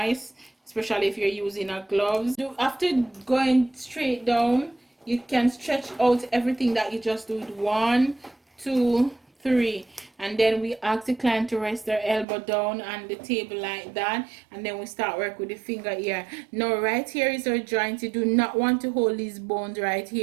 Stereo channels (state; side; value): drops out; left; at 12.2 s